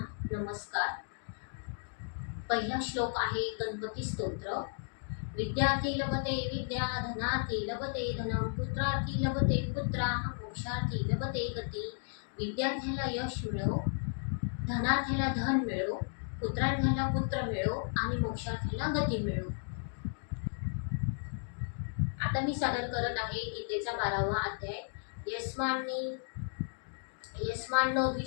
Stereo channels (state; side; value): silent; right; digital silence